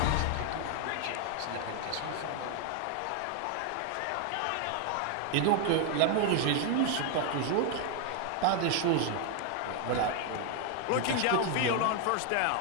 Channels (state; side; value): different; both; correlation 0.00